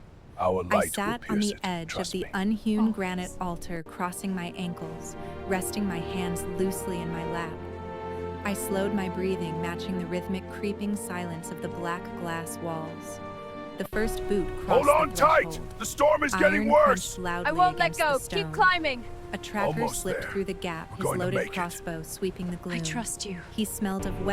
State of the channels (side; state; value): both; identical; correlation 1.00